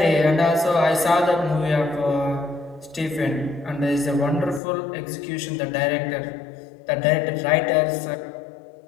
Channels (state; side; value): drops out; right; at 4.6 s